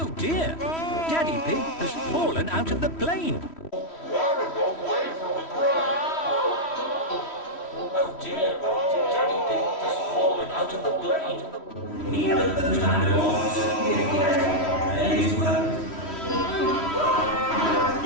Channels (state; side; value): late; right; 3.1 ms